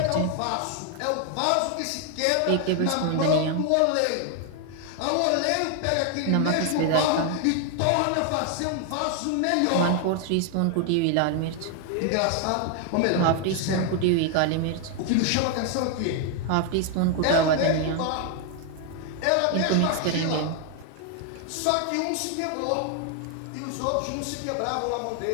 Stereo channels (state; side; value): different; both; correlation 0.00